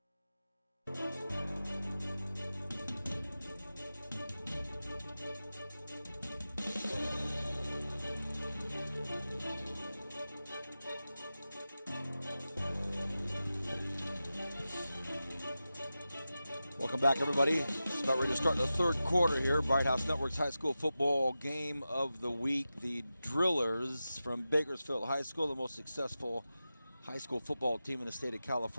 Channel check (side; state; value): both; inverted; correlation -0.93